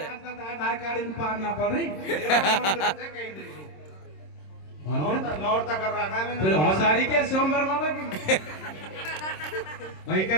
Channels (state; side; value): late; right; 26 ms